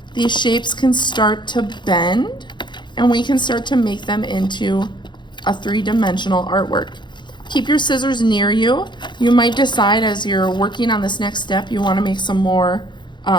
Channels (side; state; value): right; late; 0.22 ms